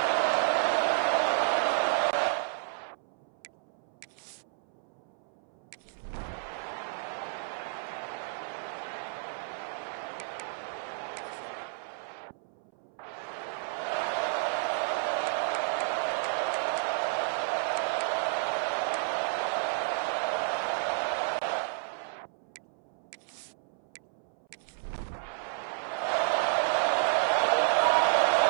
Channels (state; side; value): silent; left; 57 dB below the other